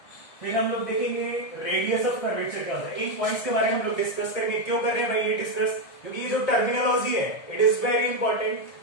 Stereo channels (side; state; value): right; late; 1.7 ms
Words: फिर हम लोग देखेंगे रेडियस ऑफ कर्वेचर क्या होता है. इन पॉइंट्स के बारे में हम लोग डिस्कस करेंगे. क्यों कर रहे हैं भाई ये डिस्कस? क्योंकि ये जो टर्मिनोलॉजी है it is very important.